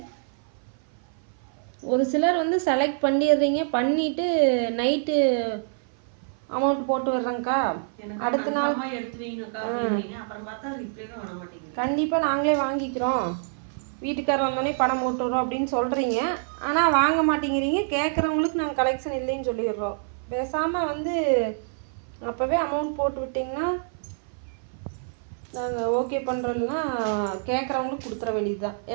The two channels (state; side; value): silent; left; 55 dB below the other